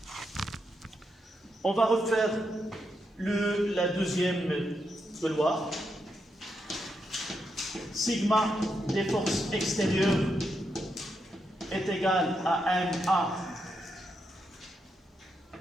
On va refaire la deuxième loi. Sigma des forces extérieures est égal à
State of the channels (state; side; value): normal; both; correlation 0.82